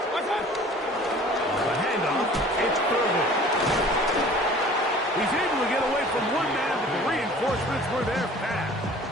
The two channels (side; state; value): both; normal; correlation 0.47